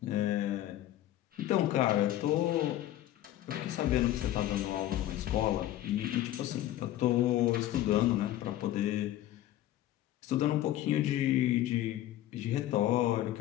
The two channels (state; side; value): quieter; right; 13.7 dB